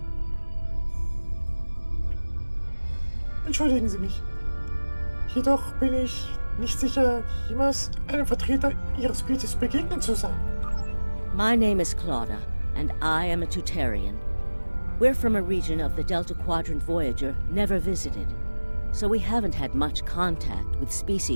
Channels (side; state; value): both; inverted; correlation -1.00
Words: Entschuldigen Sie mich. Jedoch bin ich nicht sicher, jemals einem Vertreter Ihrer Spezies begegnet zu sein. My name is Claudia, and I am a Tutarian. We're from a region of the Delta Quadrant Voyager never visited, so we haven't had much contact with